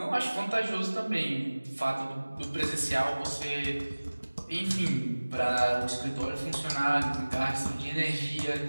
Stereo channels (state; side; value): inverted; both; correlation -1.00